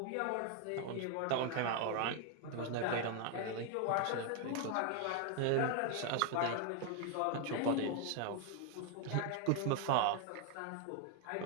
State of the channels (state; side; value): different; both; correlation 0.01